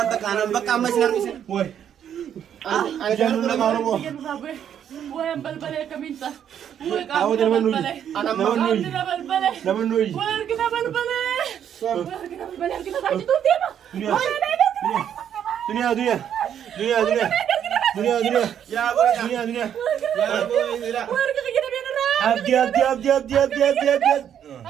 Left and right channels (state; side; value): quieter; left; 9.3 dB